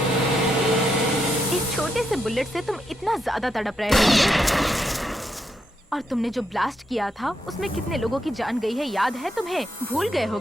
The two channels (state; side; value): normal; both; correlation 0.80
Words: इस छोटे से बुलेट से तुम इतना ज्यादा तड़प रहे हो। और तुमने जो ब्लास्ट किया था उसमें कितने लोगों की जान गई है याद है तुम्हें? भूल गए